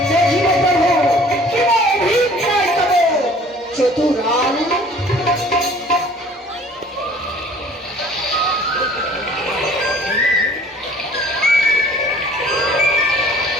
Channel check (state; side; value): normal; both; correlation 0.51